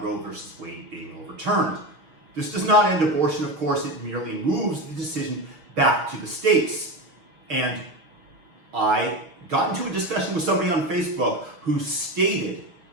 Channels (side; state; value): left; late; 6.4 ms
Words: Roe versus Wade being overturned. This does not end abortion, of course, it merely moves the decision back to the states. And I got into a discussion with somebody on Facebook who stated